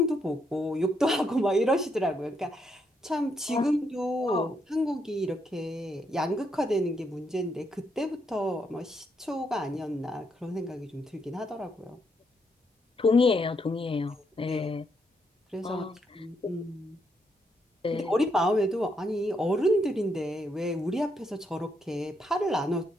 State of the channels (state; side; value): normal; both; correlation 0.77